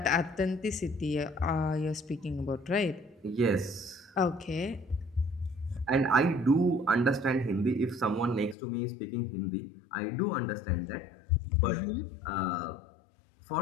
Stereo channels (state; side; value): drops out; right; at 8.6 s